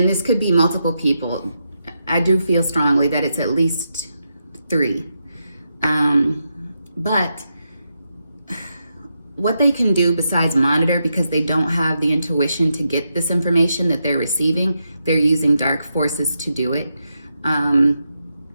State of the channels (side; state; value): both; inverted; correlation -0.84